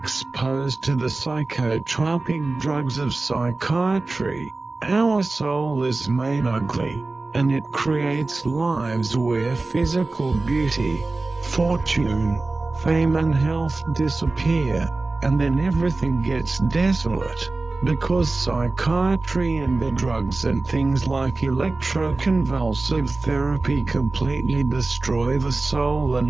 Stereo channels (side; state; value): left; quieter; 3.4 dB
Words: to the psychotropic drugs of psychiatry, our soul is made ugly, and it creates lives where physical beauty, fortune, fame and health disappear, and then everything gets desolate, because psychiatry and the drugs and things like electroconvulsive therapy completely destroy the soul